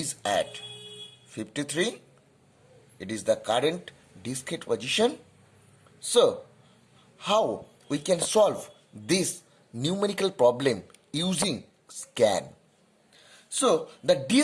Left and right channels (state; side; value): identical; both; correlation 1.00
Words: at 53. It is the current disk head position. So, how we can solve this numerical problem using scan? So, the